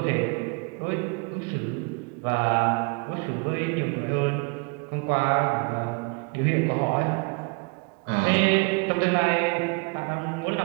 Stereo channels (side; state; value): left; quieter; 32.1 dB